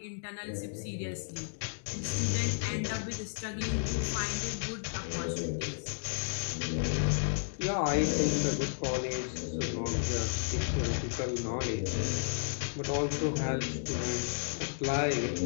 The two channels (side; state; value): right; silent; digital silence